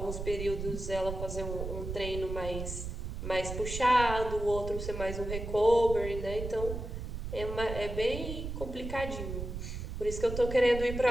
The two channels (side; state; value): right; noise; rumble, 6 dB below the sound